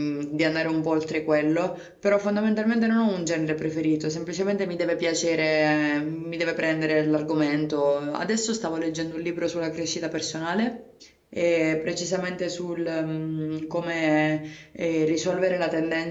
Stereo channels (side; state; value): both; identical; correlation 1.00